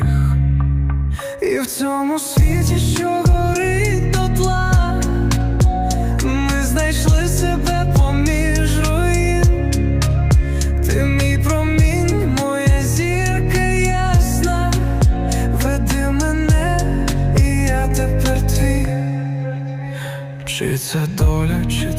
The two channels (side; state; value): both; identical; correlation 1.00